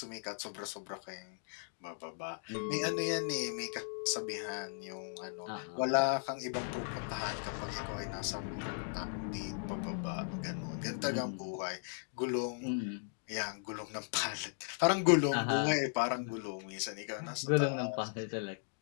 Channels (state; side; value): silent; right; digital silence